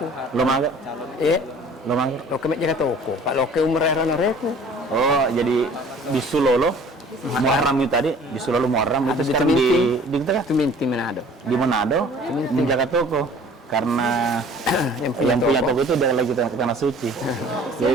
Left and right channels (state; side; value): normal; both; correlation 0.49